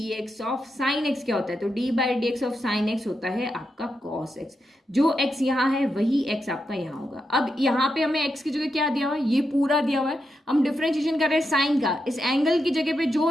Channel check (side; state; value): both; normal; correlation 0.85